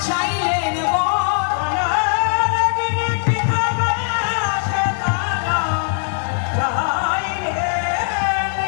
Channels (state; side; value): silent; right; digital silence